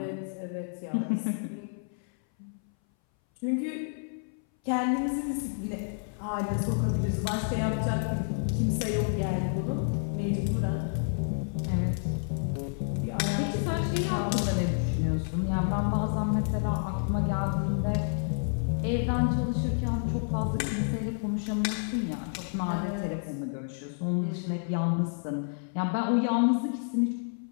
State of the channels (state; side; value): silent; right; 58 dB below the other